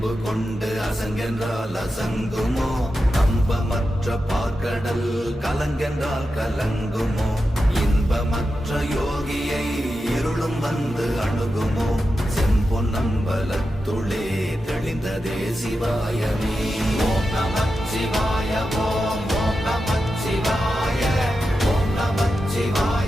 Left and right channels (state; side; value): normal; both; correlation 0.90